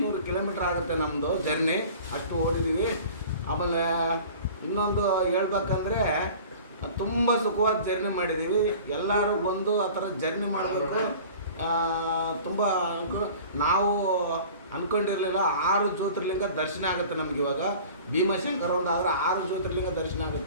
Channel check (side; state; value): both; inverted; correlation -0.43